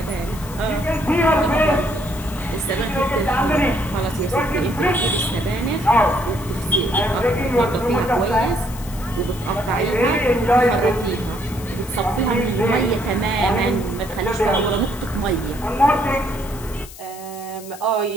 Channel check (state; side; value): noise; left; hiss, 17 dB below the sound